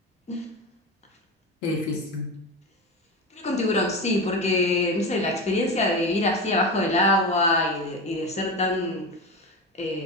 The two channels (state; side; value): normal; both; correlation 0.23